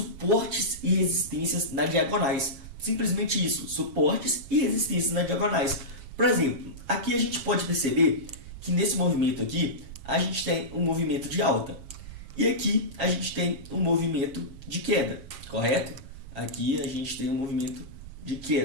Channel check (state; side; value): late; left; 7.4 ms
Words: e resistências nas diagonais. Simplesmente isso, suportes e resistências nas diagonais. Por exemplo, aqui a gente pode perceber que nesse movimento aqui, a gente tem um movimento de alta. E aqui a gente tem um movimento de queda, correto? Aqui a gente tem um movimento de